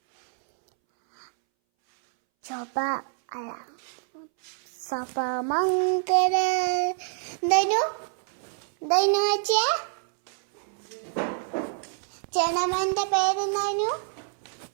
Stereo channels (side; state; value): left; silent; 60 dB below the other